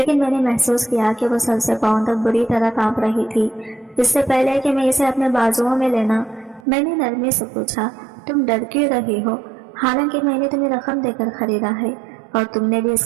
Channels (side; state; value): left; drops out; at 6.6 s